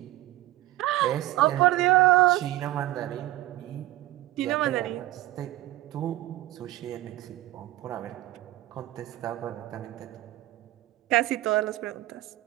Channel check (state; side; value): quieter; left; 16.4 dB